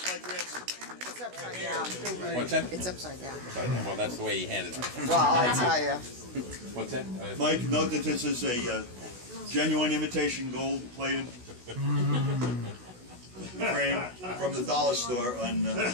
my grandson? It's upside down. What's that? It's upside down. Well, that's the way he handed it. Well, I'll tell you. What's that? Mike, note that this is a genuine imitation gold-plated frame from the dollar store on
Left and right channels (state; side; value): late; left; 16 ms